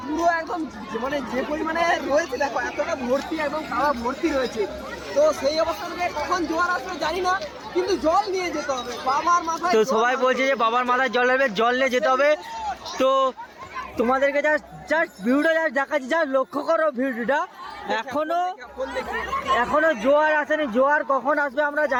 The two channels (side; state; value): both; identical; correlation 1.00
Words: পুরো একদম মানে যে পরিমাণে রয়েছে, দেখো এতটা ভর্তি, একদম খাওয়া ভর্তি রয়েছে। তো সেই অবস্থা থেকে কখন জোয়ার আসবে জানি না, কিন্তু জল নিয়ে যেতে হবে বাবার মাথায়। তো সবাই বলছে যে বাবার মাথায় জল আসবে, জল নিয়ে যেতে হবে। তো তোমাদেরকে জাস্ট ভিডিওটা দেখাচ্ছি, লক্ষ্য করো ভিডিওটা। এখনো জোয়ার আসেনি, জোয়ার কখন আসবে আমরা